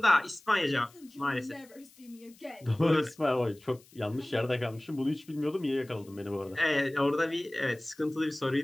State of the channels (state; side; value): noise; left; hiss, 26 dB below the sound